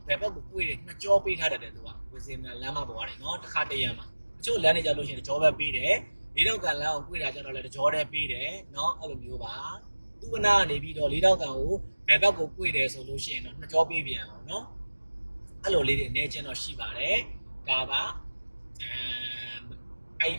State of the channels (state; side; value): inverted; both; correlation -1.00